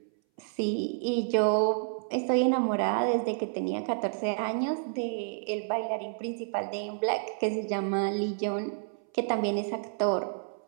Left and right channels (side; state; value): left; silent; 58 dB below the other